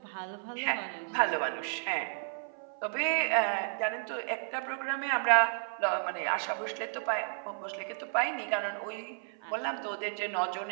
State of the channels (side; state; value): left; silent; 56 dB below the other